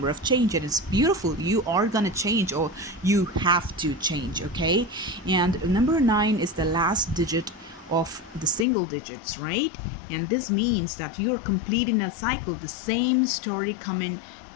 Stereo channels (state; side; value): drops out; right; at 8.7 s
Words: of change, and it's beautiful. You are gonna change, or you have to change, okay? And number 9 is the last digit of the single digits, right? And this means that you're completing a cycle, the same story coming